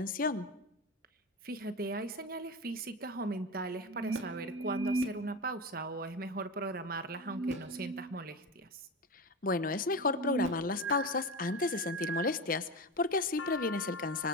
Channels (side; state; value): both; normal; correlation 0.23